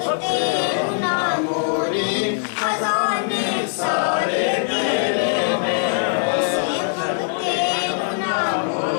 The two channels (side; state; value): right; silent; 57 dB below the other